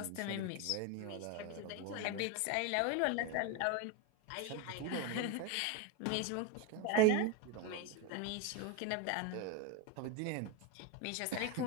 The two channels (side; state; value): both; different; correlation 0.02